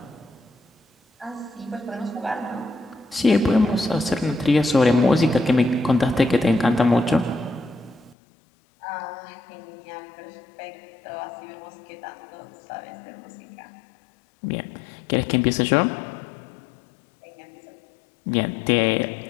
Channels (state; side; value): drops out; right; at 8.2 s